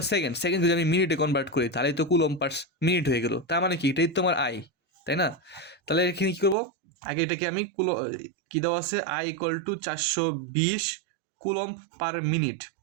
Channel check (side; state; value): left; drops out; at 6.6 s